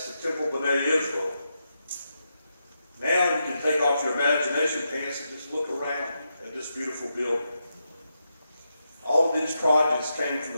to Temple B'nai Israel. Now you can take off your imagination pants and just look around at this beautiful building. All of these projects came from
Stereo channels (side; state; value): both; inverted; correlation -0.85